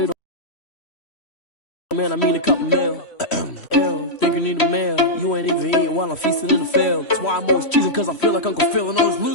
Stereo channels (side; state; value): right; late; 3.1 ms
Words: don't. Man, I mean a couple mil. Ew, think you need a meal. You ain't even eating while I'm feasting in the field. That's why I'm always cheesing, cause I feel like Uncle Phil. And all those